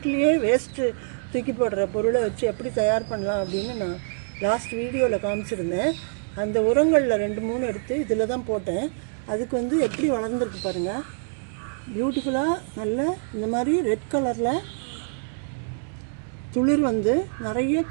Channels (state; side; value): silent; left; digital silence